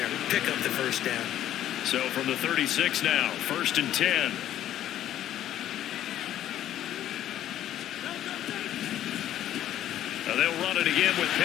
Pick up the first down. So from the 36 now, 1st and 10. Now they'll run it again with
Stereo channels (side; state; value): right; quieter; 12.0 dB